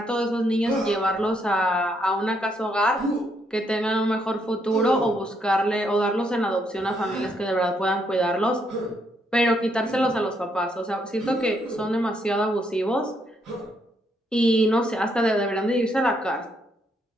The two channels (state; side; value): normal; both; correlation 0.75